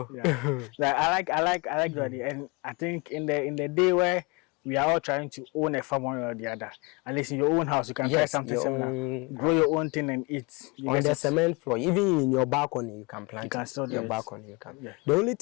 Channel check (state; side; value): quieter; right; 28.3 dB